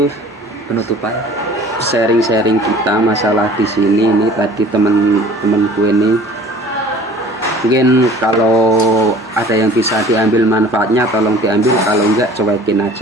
Penutupan. sharing kita masalah di sini. Ini tadi temen-temenku ini, mungkin kalau ada yang bisa diambil manfaatnya tolong diambil, kalau enggak cuekin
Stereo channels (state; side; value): normal; both; correlation 0.48